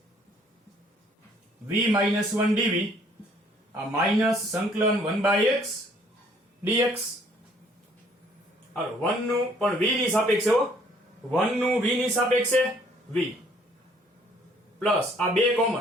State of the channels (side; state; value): both; normal; correlation 0.61